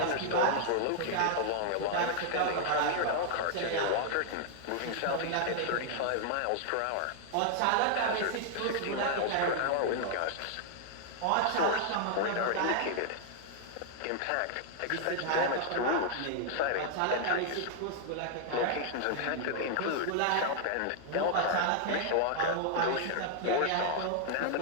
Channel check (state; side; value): different; both; correlation -0.01